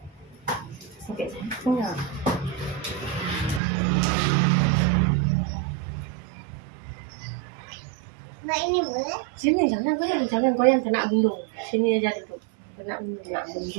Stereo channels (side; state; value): left; drops out; at 3.6 s